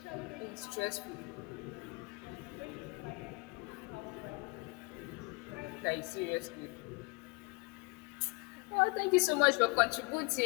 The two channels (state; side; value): quieter; right; 29.1 dB